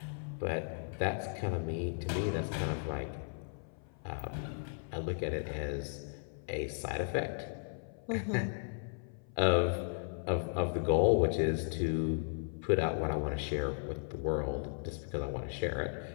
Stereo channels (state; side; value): silent; right; 54 dB below the other